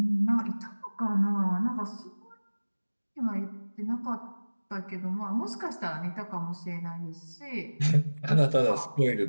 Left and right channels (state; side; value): inverted; both; correlation -1.00